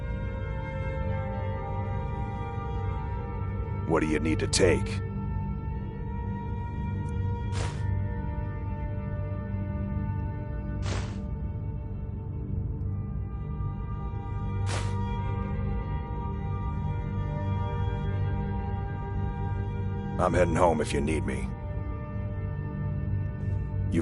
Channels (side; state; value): both; identical; correlation 1.00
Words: What do you need to take? I'm heading home if you need me.